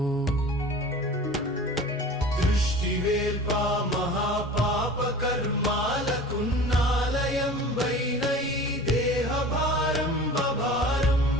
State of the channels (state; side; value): normal; both; correlation 0.39